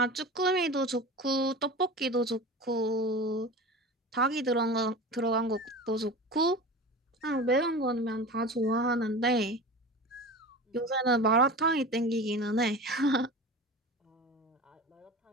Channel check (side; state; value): both; normal; correlation 0.32